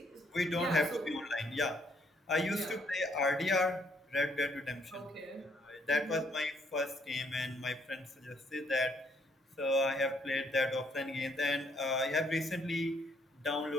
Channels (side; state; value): both; normal; correlation 0.69